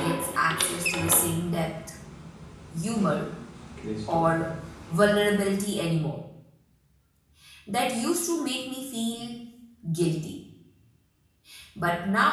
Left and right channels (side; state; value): both; identical; correlation 1.00